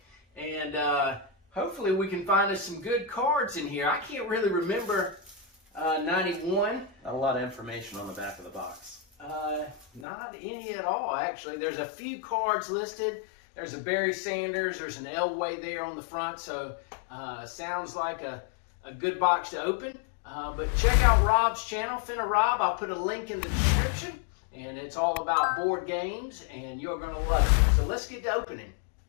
and hopefully we can find us some good cards in here. I can't really remember 91. Not a lot of information on the back of the box. Not any at all, actually. There's a few cards listed. There's a Barry Sanders. There's an Elway there on the front. So sounds like a good box to open. But check out Rob's channel, Fenirob. I'll put a link in the description. And it's all about board games, and you're going to love it. So let's get to opening.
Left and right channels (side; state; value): right; drops out; at 10.1 s